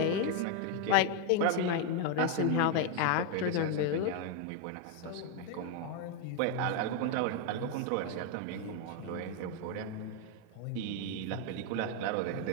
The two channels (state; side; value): different; both; correlation 0.01